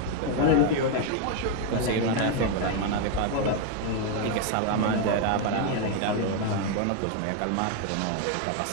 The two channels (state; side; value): different; both; correlation 0.01